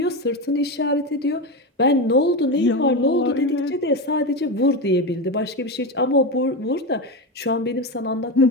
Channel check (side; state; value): both; normal; correlation 0.16